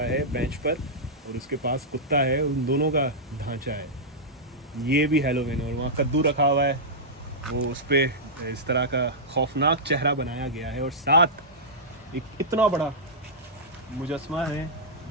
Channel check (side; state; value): both; normal; correlation -0.11